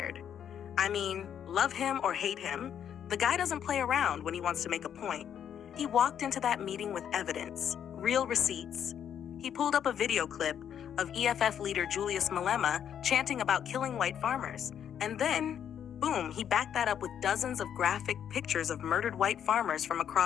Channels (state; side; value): quieter; right; 9.1 dB